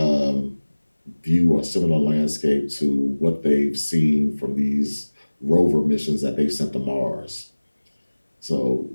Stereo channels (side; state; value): both; inverted; correlation -1.00